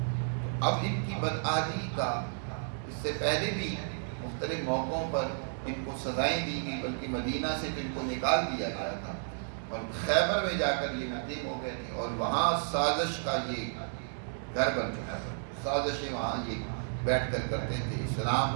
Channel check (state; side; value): silent; left; digital silence